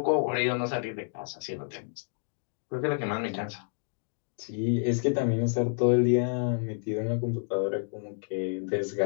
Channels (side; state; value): right; silent; digital silence